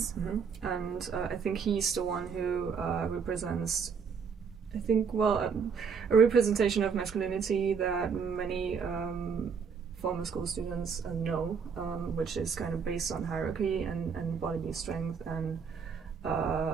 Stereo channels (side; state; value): left; quieter; 6.1 dB